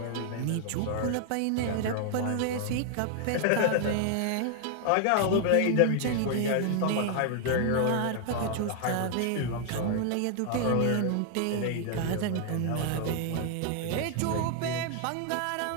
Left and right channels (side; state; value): both; different; correlation 0.00